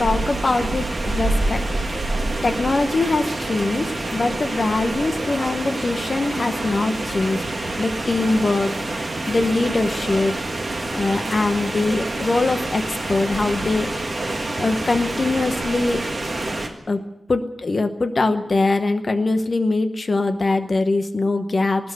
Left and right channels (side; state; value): both; normal; correlation 0.94